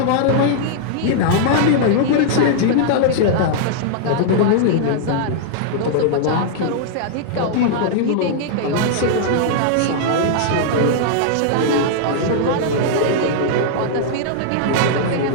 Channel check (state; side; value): different; both; correlation -0.01